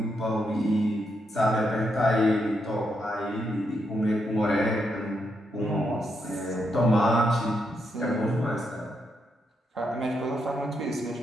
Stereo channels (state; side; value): normal; both; correlation 0.81